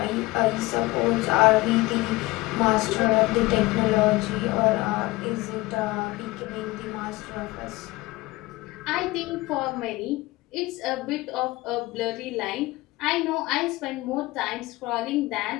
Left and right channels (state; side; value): quieter; right; 20.4 dB